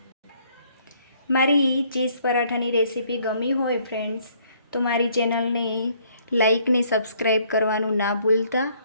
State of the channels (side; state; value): both; inverted; correlation -0.64